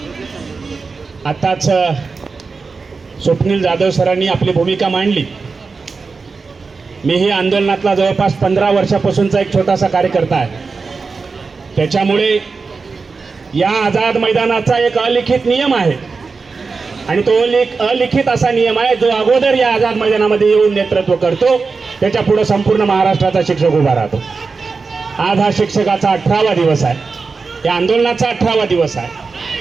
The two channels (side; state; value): left; quieter; 4.5 dB